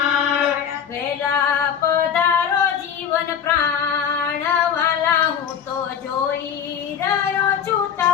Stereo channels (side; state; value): right; quieter; 8.3 dB